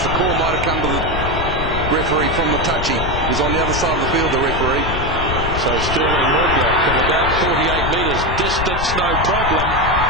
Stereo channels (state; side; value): noise; left; rumble, 5 dB below the sound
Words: the call might have come to the referee from the touchy. He's on the other side of the field, the referee. So Sterling Mortlock from about 48 metres distance, no problem.